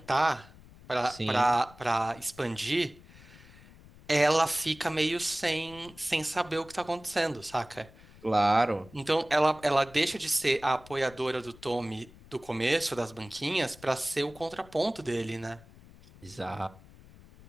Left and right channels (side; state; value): left; noise; rumble, 22 dB below the sound